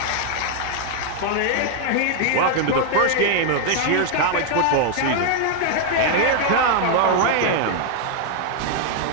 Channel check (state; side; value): different; both; correlation 0.00